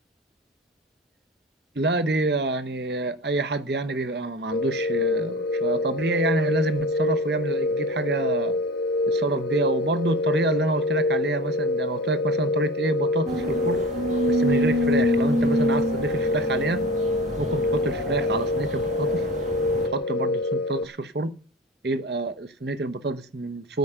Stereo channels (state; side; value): normal; both; correlation 0.34